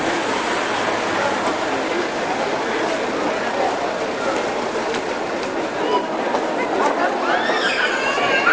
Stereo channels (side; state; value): both; identical; correlation 1.00